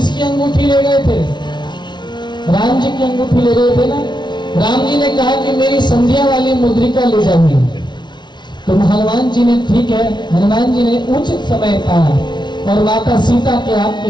अंगूठी ले गए थे? राम जी की अंगूठी ले गए थे ना। राम जी ने कहा कि मेरी संध्या वाली मुद्रिका ले जाइए। तो हनुमान जी ने, ठीक है, हनुमान जी ने उचित समय पाया और माता सीता के हाथ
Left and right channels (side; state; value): right; late; 0.21 ms